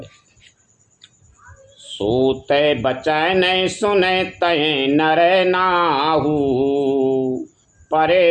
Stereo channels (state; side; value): identical; both; correlation 1.00